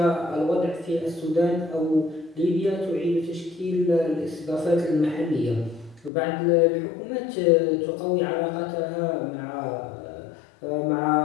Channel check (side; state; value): right; drops out; at 6.1 s